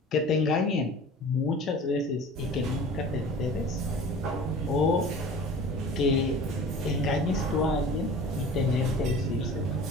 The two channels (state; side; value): normal; both; correlation 0.41